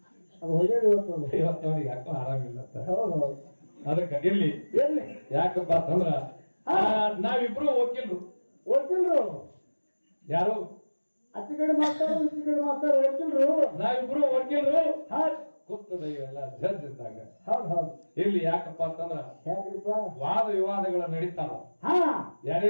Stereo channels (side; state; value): both; inverted; correlation -1.00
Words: ಇವತ್ತು ಅವ್ರಿಗೆ ಯಾಕೋ ಆರಾಮಿಲ್ಲ. ಅದಕ್ಕೆ ಇರ್ಲಿ, ಯಾಕಪ್ಪ ಅಂತಂದ್ರ ನಾವಿಬ್ರು ವಕೀಲ್ರು. ಯಾರು ಅಚ್ಚಿ ಕಡೆ ಮಾಡ್ತಾರ, ಇಚ್ಚಿ ಕಡೆ ಮಾಡ್ತಾರ, ವಕೀಲ್ರು. ನಾವಿಬ್ರು ವಕೀಲ್ರು. ಗೊತ್ತದ ಇವೆಲ್ಲ ಜಡ್ಜ್ ಇದ್ದಾಗ. ಇಲ್ಲಿ ಯಾಕಪ್ಪ ಅಂತಂದ್ರ ವಾದ ವಿವಾದಗಳು ನಡೀತಾವ.